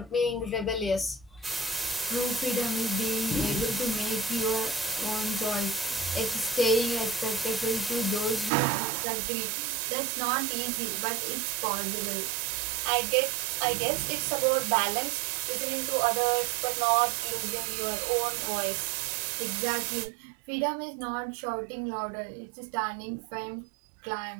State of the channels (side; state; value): left; drops out; at 8.5 s